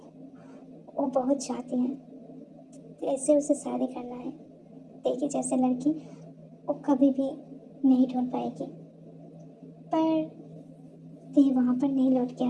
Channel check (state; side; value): identical; both; correlation 1.00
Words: वो बहुत चाहती हैं, ऐसे उसे शादी करना है। ते की जैसे लड़की वो कभी भी नहीं ढूंढ पाएगी। पर ते वहाँ पर नहीं लौट के